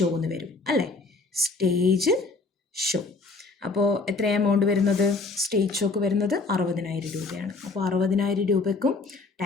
എന്ന് വരും അല്ലേ. Stage show. അപ്പോൾ എത്ര എമൗണ്ട് വരുന്നത്? സ്റ്റേജ് ഷോക്ക് വരുന്നത് 60,000 രൂപയാണ്. അപ്പോൾ 60,000 രൂപയ്ക്കും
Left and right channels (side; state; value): right; quieter; 3.8 dB